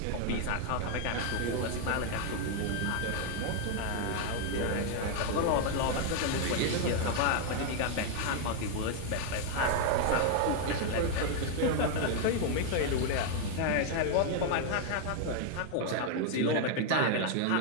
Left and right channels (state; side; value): different; both; correlation 0.00